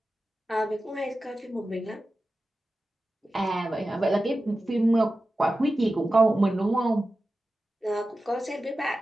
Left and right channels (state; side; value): normal; both; correlation 0.94